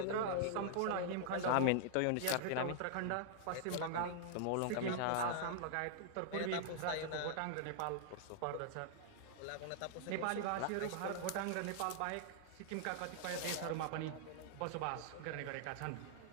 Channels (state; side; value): different; both; correlation -0.01